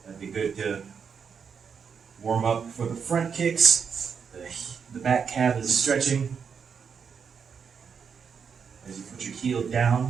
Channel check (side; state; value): left; quieter; 6.5 dB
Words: That'd be good to warm up for the front kicks. The back calf is stretching. As you put your heel